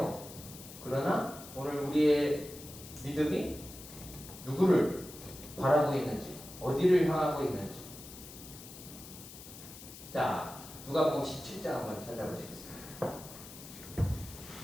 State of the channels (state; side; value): noise; left; hiss, 15 dB below the sound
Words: 그러나 오늘 우리의 믿음이 누구를 바라고 있는지, 어디를 향하고 있는지. 자, 누가복음 17장 한번 찾아보시겠습니다.